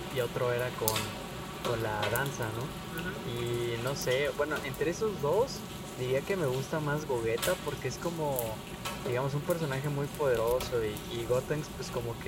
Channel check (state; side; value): identical; both; correlation 1.00